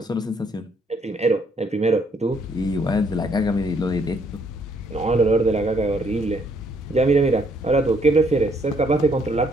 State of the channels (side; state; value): both; normal; correlation 0.69